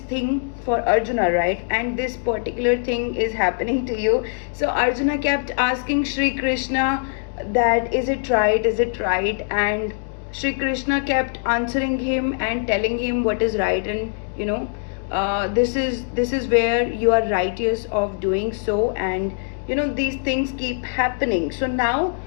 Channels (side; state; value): right; silent; digital silence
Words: for Arjuna, right? And this particular thing is happening to you. So Arjuna kept asking Shri Krishna that, is it right, is it right? And Shri Krishna kept answering him and telling him what is right, and this is where you are righteous of doing so. And these things keep happening. So now